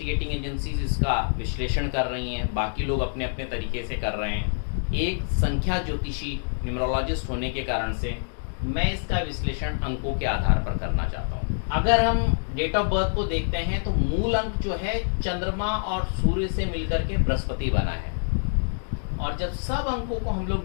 एजेंसीज इसका विश्लेषण कर रही हैं, बाकी लोग अपने अपने तरीके से कर रहे हैं। एक संख्या ज्योतिषी न्यूमरोलॉजिस्ट होने के कारण से मैं इसका विश्लेषण अंकों के आधार पर करना चाहता हूँ। अगर हम डेट ऑफ बर्थ को देखते हैं तो मूल अंक जो है चंद्रमा और सूर्य से मिलकर के बृहस्पति बना है, और जब सब अंकों को हम लोग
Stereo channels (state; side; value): silent; right; digital silence